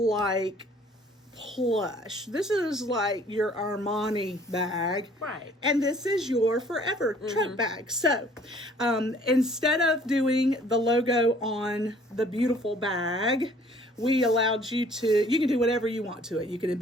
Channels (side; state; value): both; normal; correlation 0.56